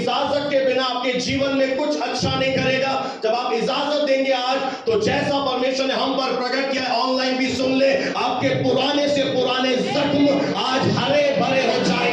के बिना आपके जीवन में कुछ अच्छा नहीं करेगा। जब आप इजाजत देंगे आज, तो जैसा परमेश्वर ने हम पर प्रकट किया, ऑनलाइन भी सुन ले, आपके पुराने से पुराने जख्म आज हरे भरे हो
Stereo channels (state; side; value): identical; both; correlation 1.00